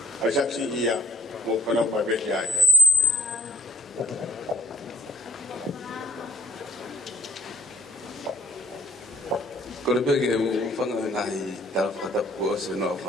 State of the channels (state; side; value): normal; both; correlation 0.64